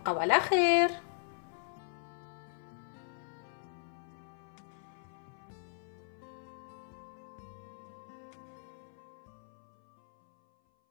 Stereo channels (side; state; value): right; silent; 52 dB below the other